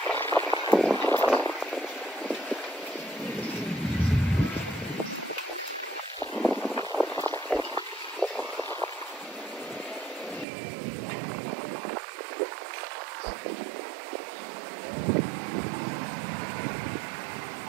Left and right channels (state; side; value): drops out; left; at 10.5 s